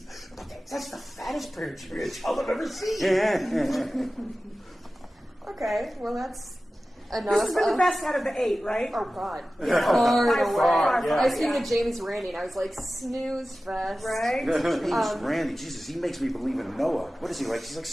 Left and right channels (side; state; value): both; normal; correlation 0.95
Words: the fattest period child I've ever seen. Yeah. Okay, well that's enough. This has been the best out of the 8, right? Oh God. Yeah. Far By away. far, yeah. I was thinking yeah. of Jamie's Randy, and I was like, snooze fest. Right? He's Randy. Jesus, he makes me believe in Noah. What is he like? He's like